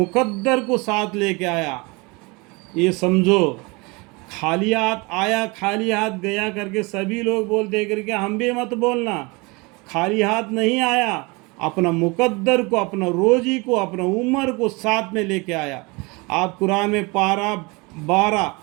کو ساتھ لے کے آیا. یہ سمجھو، خالی ہاتھ آیا خالی ہاتھ گیا کر کے سبھی لوگ بولتے کر کے ہم بھی مت بولنا. خالی ہاتھ نہیں آیا، اپنا مقدر کو، اپنا روزی کو، اپنا عمر کو ساتھ میں لے کے آیا. آپ قرآن میں پارہ 12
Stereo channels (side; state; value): left; quieter; 26.7 dB